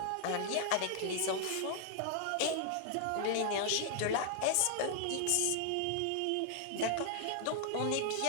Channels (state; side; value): different; both; correlation 0.00